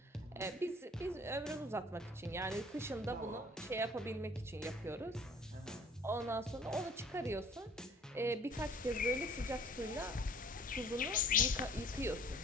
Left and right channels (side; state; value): both; normal; correlation 0.51